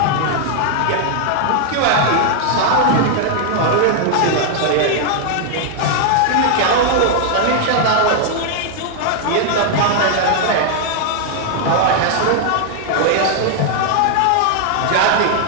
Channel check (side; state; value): both; different; correlation 0.00